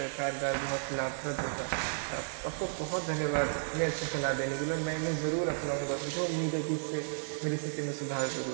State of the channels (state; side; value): silent; left; digital silence